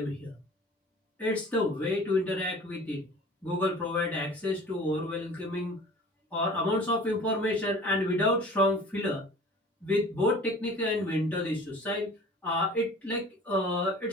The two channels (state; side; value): normal; both; correlation 0.44